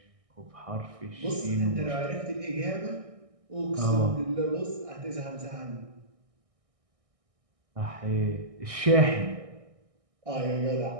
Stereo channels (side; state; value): left; late; 1.6 ms